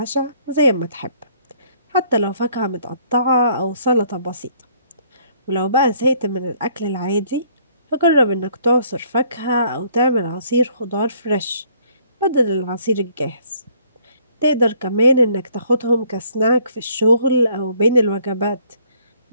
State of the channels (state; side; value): inverted; both; correlation -0.63